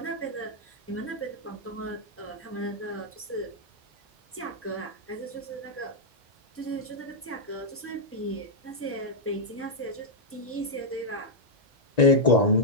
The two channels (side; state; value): both; normal; correlation -0.05